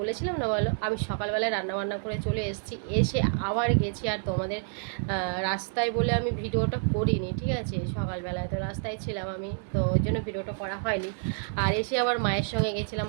বলেছিলাম না, বলো, আমি সকালবেলায় রান্নাবান্না করে চলে এসেছি, এসে আবার গেছি। আর তোমাদের রাস্তায় বলে আমি ভিডিওটা করিনি, ঠিক আছে। সকালবেলায় তো রাস্তায় ছিলাম আমি, তো ওই জন্য ভিডিওটা করা হয়নি। আর এসে আবার মায়ের সঙ্গে গেছিলাম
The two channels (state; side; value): silent; left; 59 dB below the other